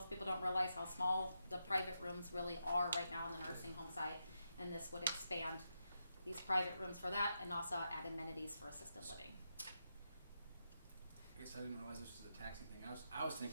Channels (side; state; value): both; inverted; correlation -0.85